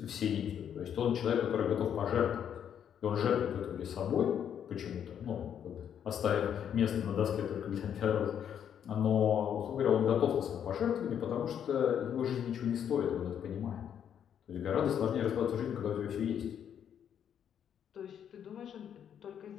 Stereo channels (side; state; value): right; quieter; 8.9 dB